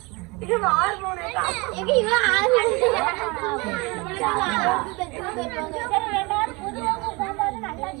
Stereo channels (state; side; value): quieter; left; 26.5 dB